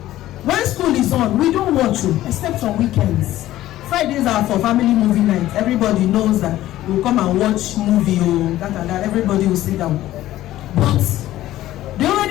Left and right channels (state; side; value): quieter; right; 14.5 dB